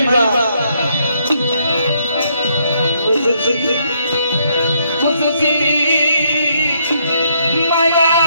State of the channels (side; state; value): both; inverted; correlation -0.72